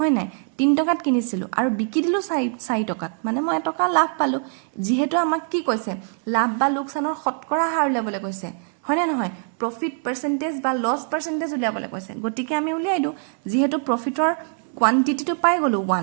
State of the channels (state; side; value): silent; left; 55 dB below the other